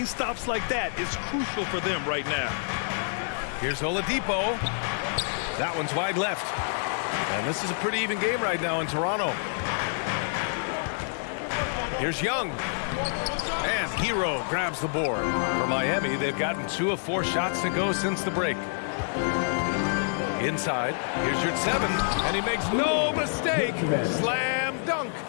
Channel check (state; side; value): silent; right; digital silence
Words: stops like that is crucial for them right now. Here's Oladipo. That one's wide left. And this is a pretty even game right now in Toronto. Here's Young. And Hero grabs the board. For Miami, they've gotten 2 of 4 shots to go since the break. Inside, here's your 7, and he makes no mistake. Slam dunk.